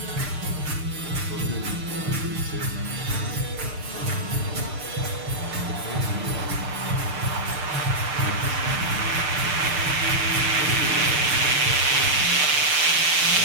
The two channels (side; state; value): left; late; 6.6 ms